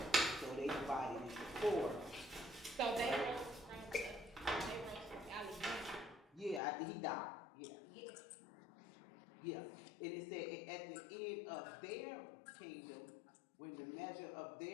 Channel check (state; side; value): drops out; right; at 6.6 s